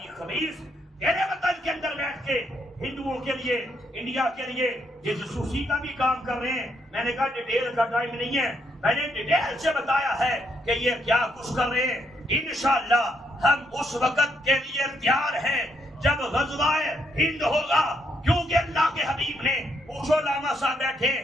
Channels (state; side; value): normal; both; correlation 0.75